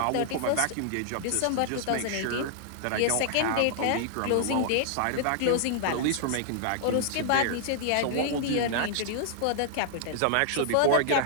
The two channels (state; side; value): different; both; correlation -0.01